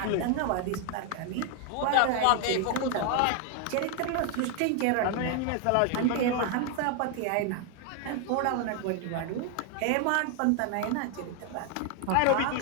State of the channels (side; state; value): both; different; correlation 0.01